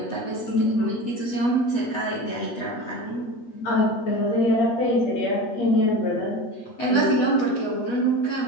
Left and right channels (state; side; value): late; right; 8.1 ms